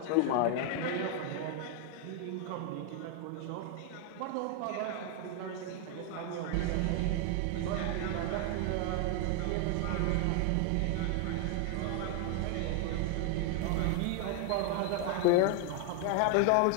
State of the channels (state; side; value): different; both; correlation 0.00